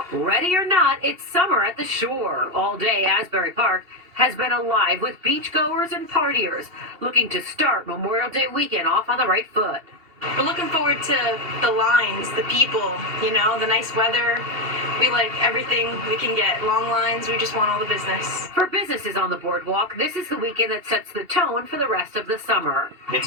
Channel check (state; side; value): late; left; 2.8 ms